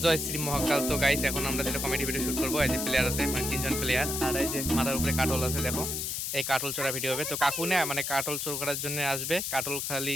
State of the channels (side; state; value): left; noise; hiss, 2 dB below the sound